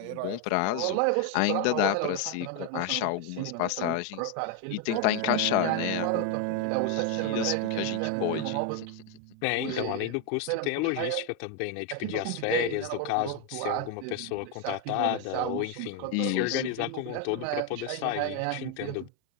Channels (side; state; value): both; different; correlation 0.02